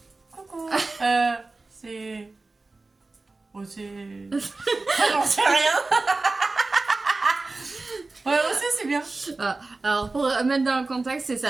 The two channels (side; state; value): left; quieter; 3.4 dB